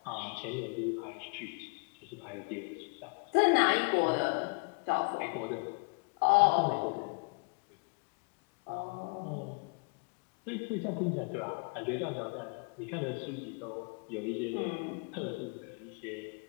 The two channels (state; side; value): quieter; right; 32.9 dB